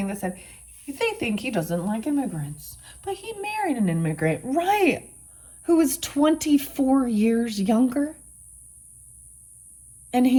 that said, they think he doesn't like immigrants. But he married an immigrant, right? Who was 24 years younger.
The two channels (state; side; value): identical; both; correlation 1.00